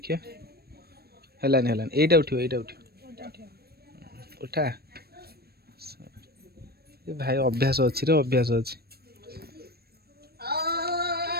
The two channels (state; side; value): late; left; 0.46 ms